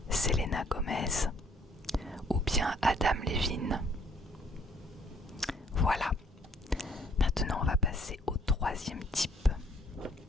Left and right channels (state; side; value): normal; both; correlation 0.62